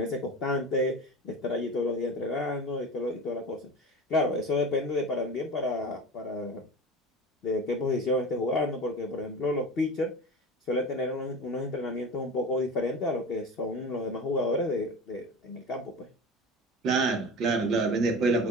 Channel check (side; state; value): both; normal; correlation 0.32